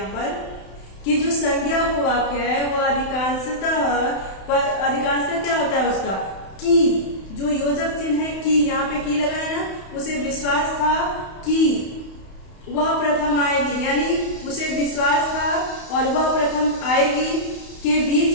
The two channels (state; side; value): late; right; 31 ms